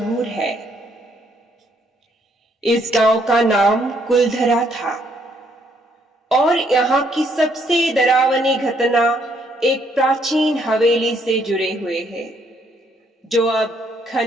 है। इस गांव का नाम कुलधरा था और यहाँ की सबसे डरावनी घटना एक प्राचीन हवेली से जुड़े हुए है जो अब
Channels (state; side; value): normal; both; correlation 0.69